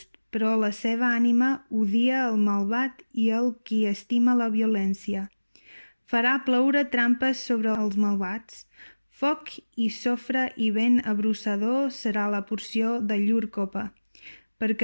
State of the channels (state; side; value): inverted; both; correlation -1.00